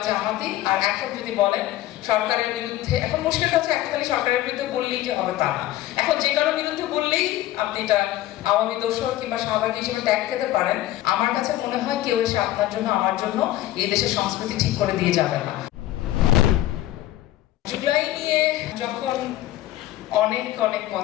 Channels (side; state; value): right; quieter; 14.7 dB